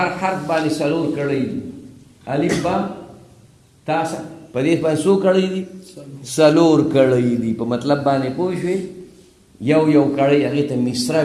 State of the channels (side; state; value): both; identical; correlation 1.00